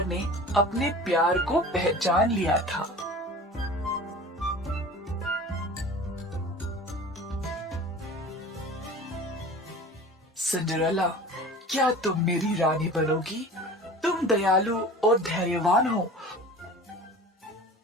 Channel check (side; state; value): both; normal; correlation 0.39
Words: ने अपने प्यार को पहचान लिया था। सिंड्रेला, क्या तुम मेरी रानी बनोगी? तुम दयालु और धैर्यवान हो।